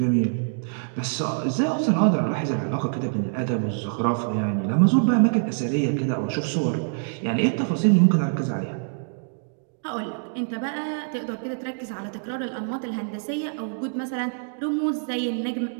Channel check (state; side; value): silent; left; digital silence